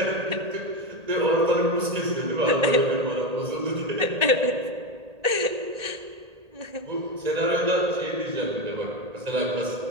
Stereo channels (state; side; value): late; left; 1.8 ms